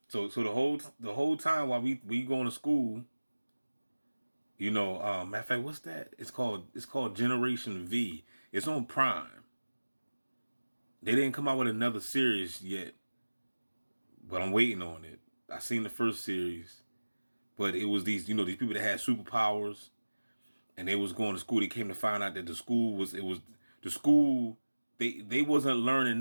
So the whole time while we going to school, Matter of fact, what's that? It's called Generation V. It's on Prime. They didn't come out with another series yet, but I'm waiting on it. I seen the first series, but it was these people that had superpowers, and they was going to school. They came to find out that the school. They wasn't learning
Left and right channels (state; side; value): inverted; both; correlation -1.00